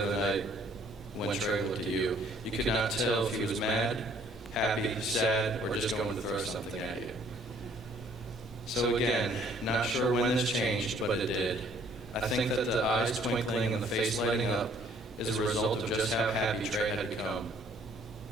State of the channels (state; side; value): normal; both; correlation 0.60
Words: other night when Trey looked at you. You could not tell if he was mad, happy, sad, or just going to throw something at you. So again, not sure when this changed, but it did. I think that the eyes twinkling and the face lighting up is a result of just how happy Trey had become.